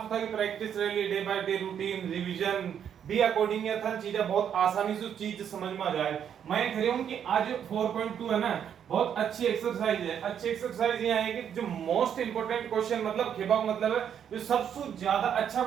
से था कि प्रैक्टिस रही day by day routine revision भी अकॉर्डिंग ये था चीजें बहुत आसानी से चीज समझ में आ जाए। मैं कह रहा हूं कि आज 4.2 है ना बहुत अच्छी एक्सरसाइज है, अच्छी एक्सरसाइज ये है कि जो मोस्ट इंपोर्टेंट क्वेश्चन मतलब खेबा मतलब है जो सबसे ज्यादा अच्छा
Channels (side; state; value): left; quieter; 8.7 dB